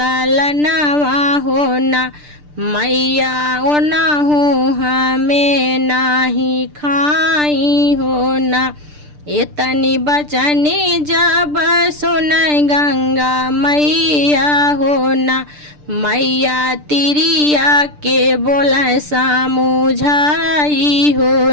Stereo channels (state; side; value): late; left; 6.7 ms